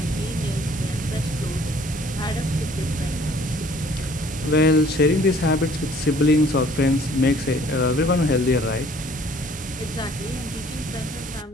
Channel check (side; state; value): both; normal; correlation 0.57